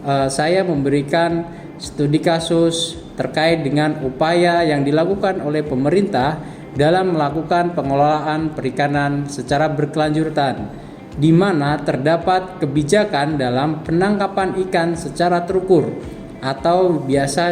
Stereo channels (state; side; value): identical; both; correlation 1.00